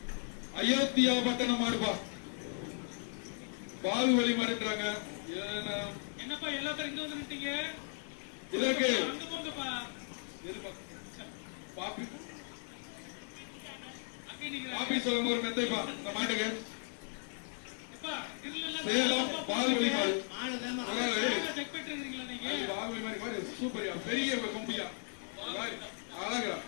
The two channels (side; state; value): right; silent; 53 dB below the other